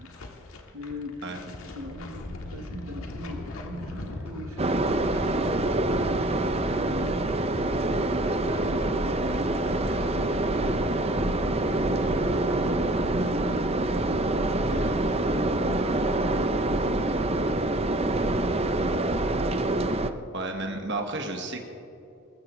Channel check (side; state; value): both; normal; correlation 0.50